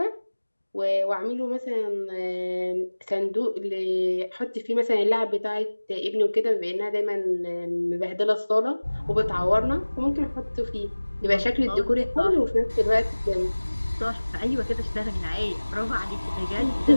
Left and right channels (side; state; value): both; inverted; correlation -1.00